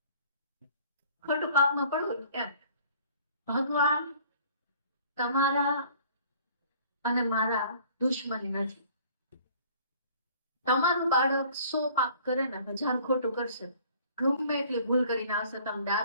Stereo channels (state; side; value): inverted; both; correlation -0.53